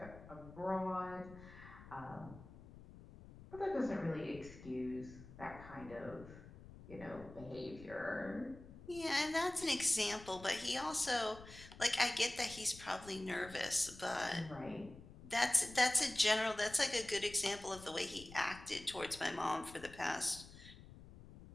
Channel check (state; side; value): noise; left; rumble, 17 dB below the sound